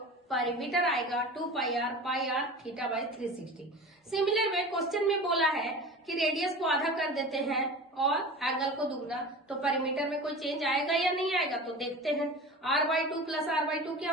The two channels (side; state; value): both; normal; correlation 0.34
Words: पेरीमीटर आएगा 2πr theta by 360। Similar way question में बोला है कि रेडियस को आधा कर देते हैं और एंगल को दुगना, तो पेरीमीटर में कोई चेंज आएगा या नहीं आएगा, तो देखते हैं। r/2 प्लस r/2 क्या